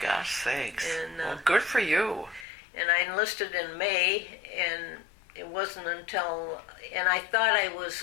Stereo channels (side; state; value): right; drops out; at 2.5 s